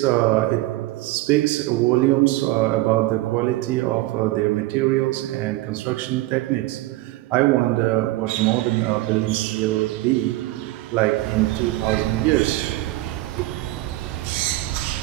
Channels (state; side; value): quieter; left; 18.0 dB